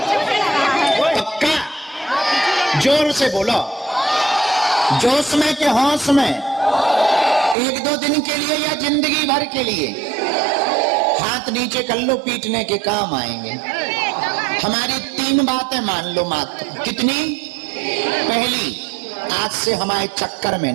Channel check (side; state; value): left; drops out; at 7.6 s